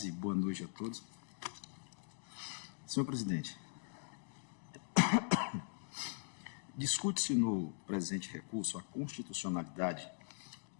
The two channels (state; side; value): silent; right; digital silence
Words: boa noite a todos. Senhor presidente, discute-se no presente recurso a constitucionalidade,